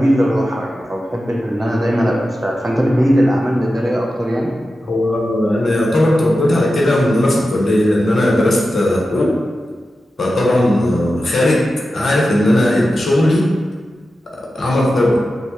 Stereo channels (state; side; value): normal; both; correlation 0.92